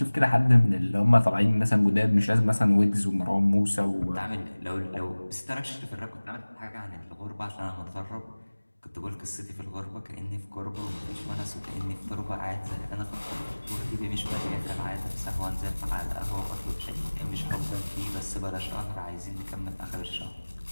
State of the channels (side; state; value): both; inverted; correlation -1.00